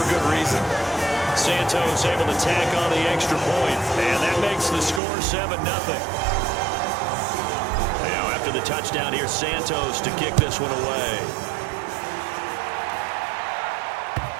good reason. Santos able to tack on the extra point, and that makes the score 7-0. Now after the touchdown here, Santos to kick this one away.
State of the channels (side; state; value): left; drops out; at 5.0 s